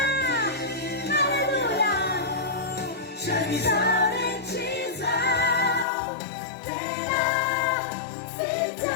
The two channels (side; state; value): right; drops out; at 5.9 s